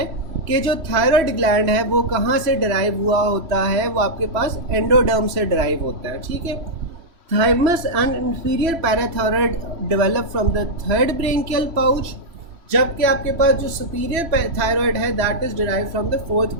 कि जो थायराइड ग्लैंड है वो कहाँ से डिराइव हुआ होता है, वो आपके पास एंडोडर्म से डिराइव होता है, ठीक है। Thymus and inferior parathyroid develop from the third branchial pouch, जबकि आपके पास जो सुपीरियर थायराइड है that is derive from the fourth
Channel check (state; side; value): late; left; 3.0 ms